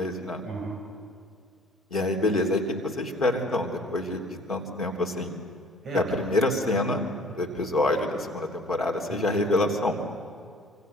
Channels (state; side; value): normal; both; correlation 0.50